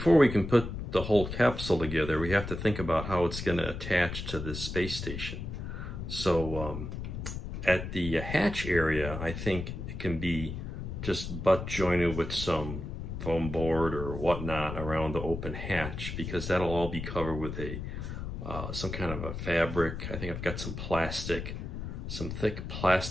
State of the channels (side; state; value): left; noise; rumble, 6 dB below the sound